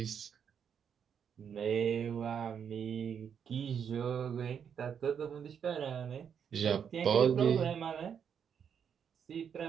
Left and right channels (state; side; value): quieter; left; 7.6 dB